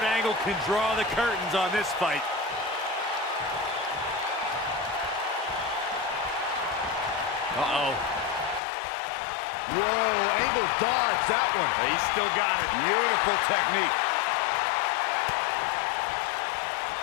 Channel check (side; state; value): right; drops out; at 8.6 s